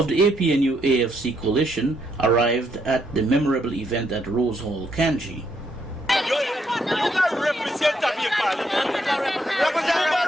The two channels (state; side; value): normal; both; correlation 0.74